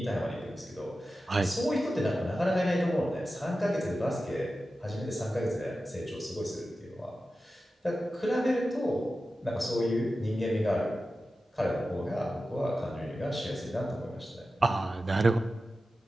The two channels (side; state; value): both; normal; correlation 0.93